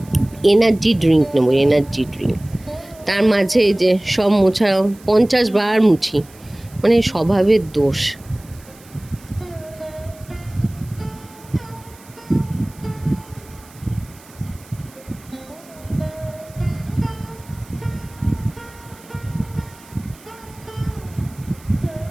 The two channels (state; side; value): noise; right; hiss, 24 dB below the sound